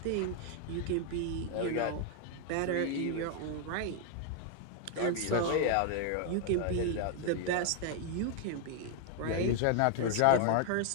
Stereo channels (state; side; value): different; both; correlation 0.00